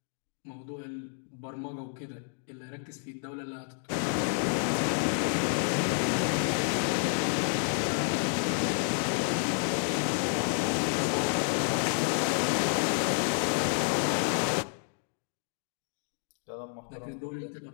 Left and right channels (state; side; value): silent; right; 58 dB below the other